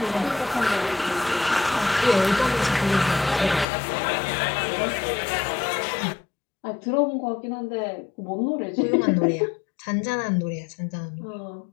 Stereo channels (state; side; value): drops out; right; at 3.7 s